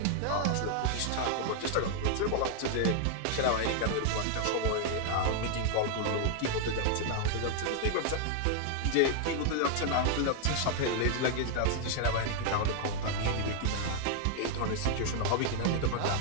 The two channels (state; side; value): different; both; correlation 0.00